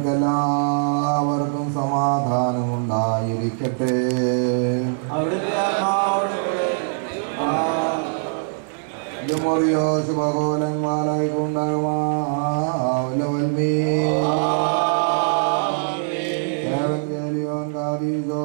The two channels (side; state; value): left; silent; 64 dB below the other